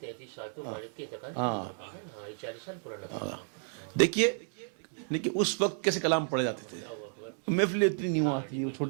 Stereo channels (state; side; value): silent; left; 56 dB below the other